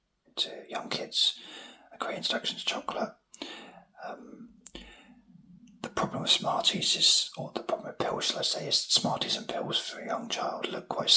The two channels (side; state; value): both; identical; correlation 1.00